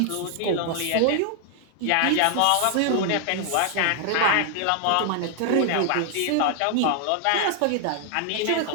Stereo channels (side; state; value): both; different; correlation 0.00